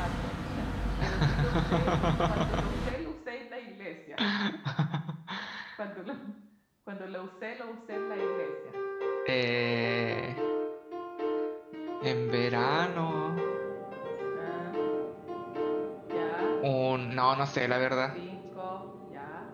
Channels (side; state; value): both; identical; correlation 1.00